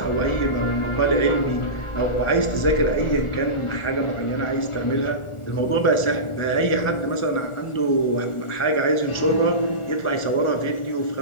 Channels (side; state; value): right; late; 1.4 ms